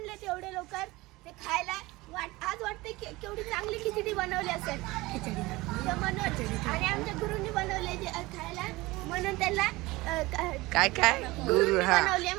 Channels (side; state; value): left; quieter; 20.9 dB